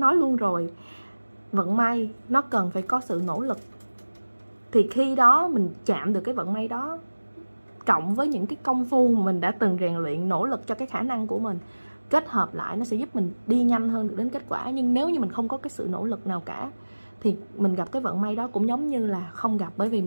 luôn rồi, vận may nó cần phải có sự nỗ lực. Thì khi đó mình chạm được cái vận may đó, cộng với những cái công phu mà mình đã từng rèn luyện, nỗ lực cho cái khả năng của mình, kết hợp lại nó sẽ giúp mình đi nhanh hơn được đến kết quả. Nhưng nếu như mình không có cái sự nỗ lực nào cả, thì mình gặp cái vận may đó cũng giống như là không gặp. Bởi vì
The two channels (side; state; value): both; inverted; correlation -1.00